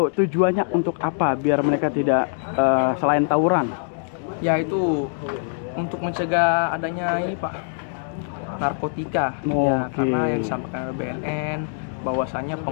tujuannya untuk apa biar mereka tidak selain tawuran? Ya itu untuk mencegah adanya ini, Pak, narkotika. Ya, karena yang disampaikan oleh BNN bahwasanya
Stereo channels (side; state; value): right; silent; digital silence